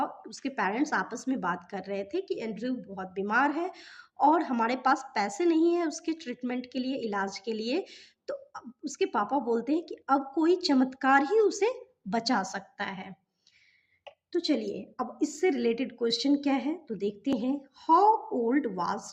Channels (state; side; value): identical; both; correlation 1.00